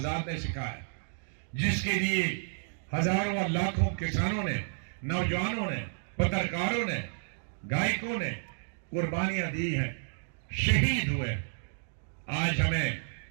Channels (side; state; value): left; silent; digital silence